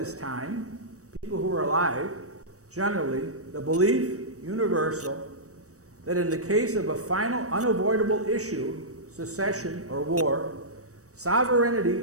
time, people who were alive, generally, the belief, universal, that in the case of a final unavoidable issue, secession or war, sovereignty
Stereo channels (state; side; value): late; left; 0.65 ms